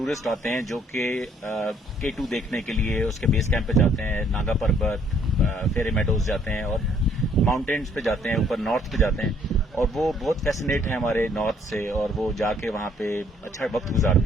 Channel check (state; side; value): normal; both; correlation 0.64